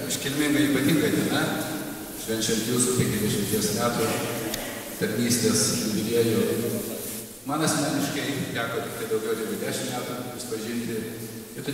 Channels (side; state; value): both; identical; correlation 1.00